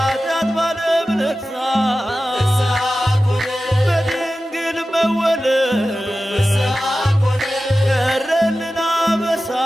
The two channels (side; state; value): both; normal; correlation 0.94